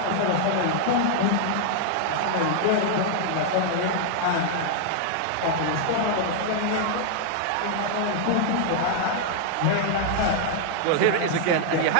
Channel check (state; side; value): different; both; correlation 0.00